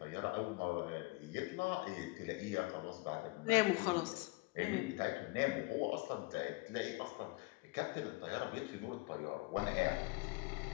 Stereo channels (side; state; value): right; quieter; 23.9 dB